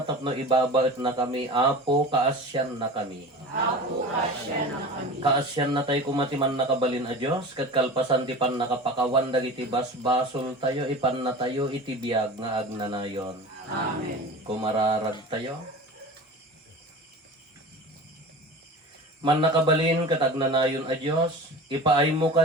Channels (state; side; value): normal; both; correlation 0.34